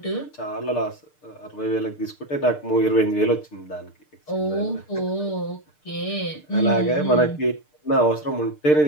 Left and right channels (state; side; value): late; right; 6.7 ms